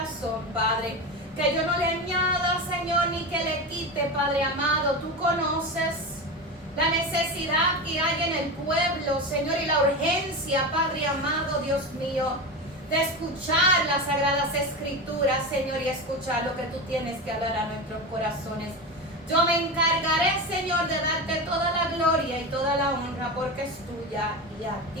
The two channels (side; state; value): both; normal; correlation 0.22